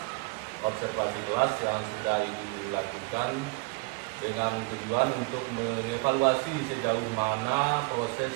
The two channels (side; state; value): left; quieter; 27.6 dB